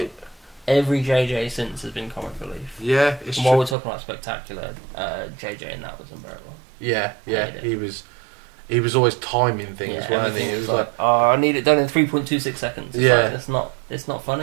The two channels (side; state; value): left; drops out; at 3.8 s